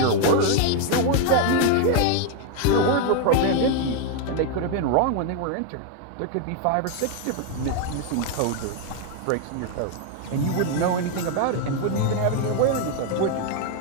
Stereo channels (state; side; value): different; both; correlation 0.01